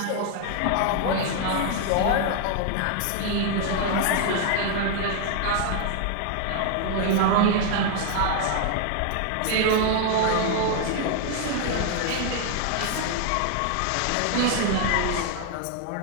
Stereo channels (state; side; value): different; both; correlation 0.00